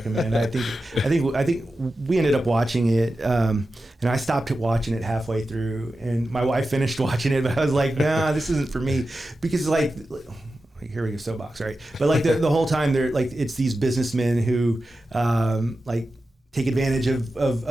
I think we ended up watching it, and I stopped watching it halfway through, and my wife finished watching it, but I was like, nah, this isn't for me, because like, here we go, soapbox, right? But like the whole time they're like, it's these businessmen who like take advantage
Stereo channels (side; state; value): both; normal; correlation 0.92